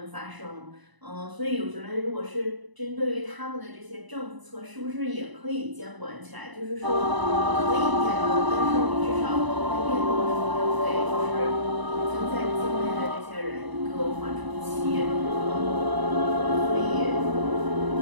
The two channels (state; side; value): late; left; 1.0 ms